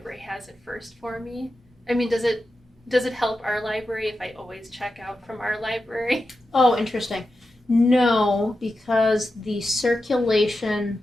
has it first for me? I mean, does it help our library if I always check out from our library? Oh, interesting. No, because the circulation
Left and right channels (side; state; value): both; normal; correlation 0.90